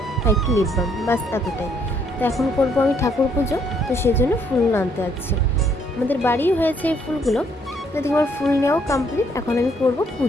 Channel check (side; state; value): both; normal; correlation 0.68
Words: আর একটু লিপ বাম, বাস এতটাই। তো এখন করবো আমি ঠাকুর পুজো, তো সেই জন্য ফুল আনতে যাচ্ছি। আমাদের বাড়িও হয়েছে এই ফুলগুলো। তো এদিকে আমার ফুল নেওয়াও কমপ্লিট, এখন আমি করবো